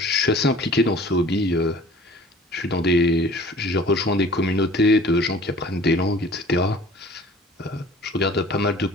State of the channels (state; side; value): normal; both; correlation 0.48